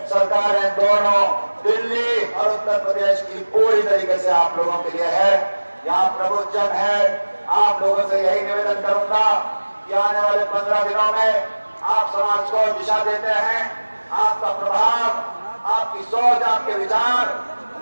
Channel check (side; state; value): both; inverted; correlation -1.00